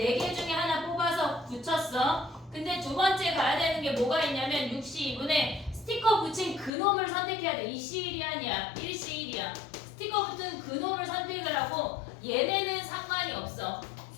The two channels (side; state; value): right; drops out; at 6.7 s